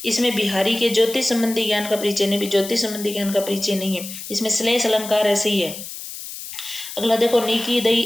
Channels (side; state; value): left; noise; hiss, 10 dB below the sound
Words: इसमें बिहारी के ज्योतिष संबंधी ज्ञान का परिचय नहीं, भी ज्योतिष संबंधी ज्ञान का परिचय नहीं है। इसमें श्लेष अलंकार है, सही है। अगला देखो, नीकी